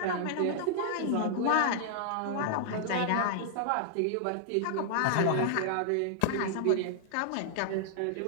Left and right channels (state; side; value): different; both; correlation -0.01